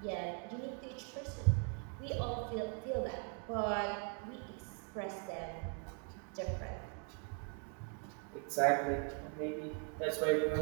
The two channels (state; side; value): quieter; left; 37.2 dB